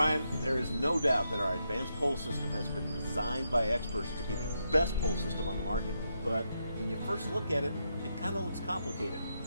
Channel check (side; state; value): both; inverted; correlation -0.82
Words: there is no doubt that our advanced pole system has been designed by experts to be the best pole system on the market. But when you first look at it, it kind of looks complicated.